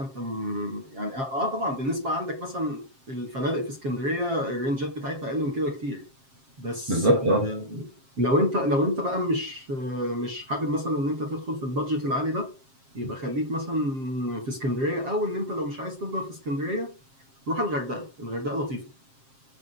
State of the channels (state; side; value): late; left; 7.5 ms